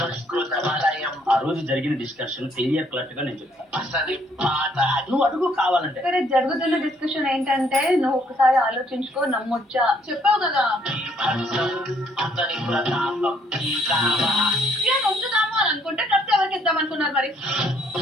ఆ రోజు జరిగిన డిస్కషన్ క్లియర్ కట్ గా నేను చెప్తాను. నువ్వు అడుగు కావాలంటే. సరే, జరుగుతున్న డిస్కషన్ ఏంటంటే నువ్వు ఒకసారి ఆలోచించుకో, నమ్మొచ్చా చెప్పావు కదా. నొచ్చుదాము అని అనుకుంటే డ్రెస్ ఎవరికి ఇద్దాం అనుకున్నారు మరి?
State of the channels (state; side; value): normal; both; correlation 0.66